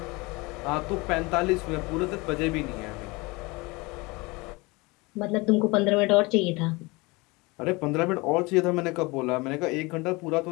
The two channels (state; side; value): quieter; right; 24.8 dB